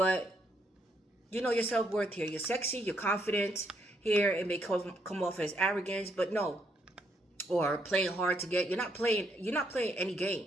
you know your self-worth here. You're sexy, you're confident here. It may come off as arrogance, but no, or playing hard to get. You're not playing any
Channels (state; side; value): normal; both; correlation 0.74